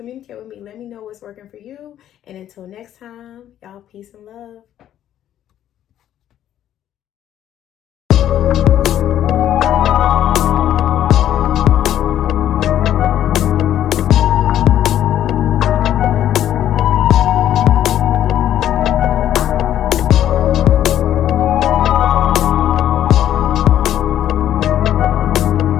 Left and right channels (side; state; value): right; quieter; 11.3 dB